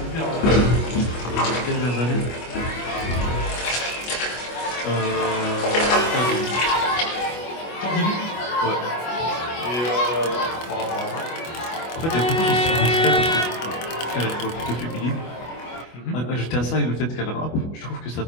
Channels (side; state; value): right; late; 25 ms